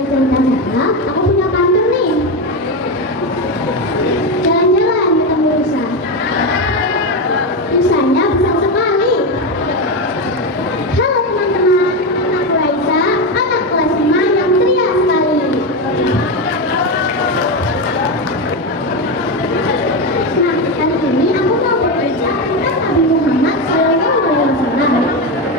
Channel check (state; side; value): normal; both; correlation 0.13